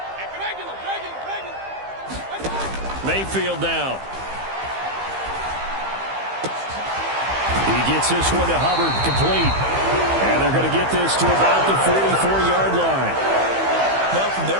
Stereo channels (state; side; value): late; left; 15 ms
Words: Mayfield now. He gets this one to Hubbard, complete. And they're going to get this to about the 44-yard line. Now, from their